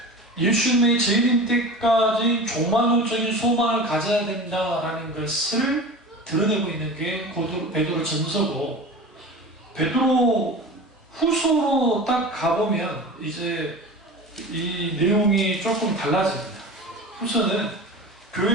예수님의 재림 때까지 종말론적인 소망을 가져야 된다라는 것을 드러내고 있는 게 베드로 전서고, 베드로 후서로 딱 가보면 이제 이 내용이 조금 달라집니다. 후서는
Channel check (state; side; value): normal; both; correlation 0.34